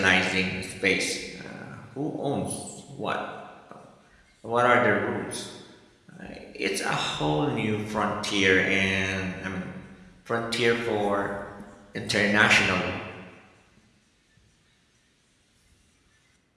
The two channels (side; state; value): both; identical; correlation 1.00